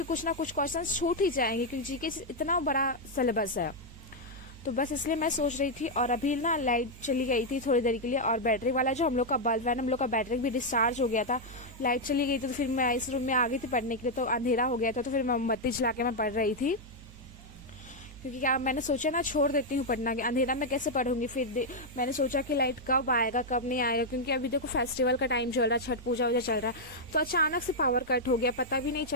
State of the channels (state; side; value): noise; right; hum, 18 dB below the sound